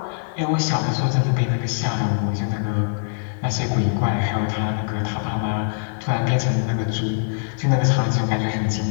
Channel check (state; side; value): silent; right; 64 dB below the other